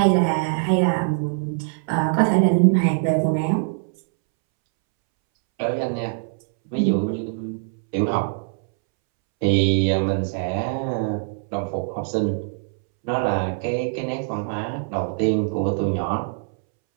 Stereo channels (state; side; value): silent; left; 64 dB below the other